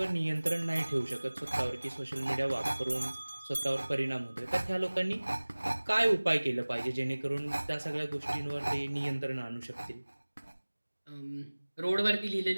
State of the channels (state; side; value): inverted; both; correlation -1.00